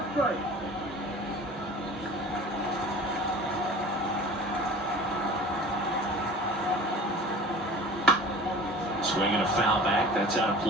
strike. Swinging a foul back. That's out of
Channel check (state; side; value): normal; both; correlation 0.41